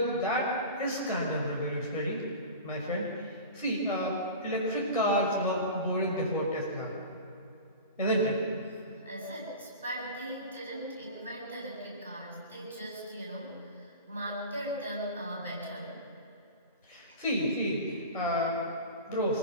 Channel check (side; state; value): both; inverted; correlation -0.33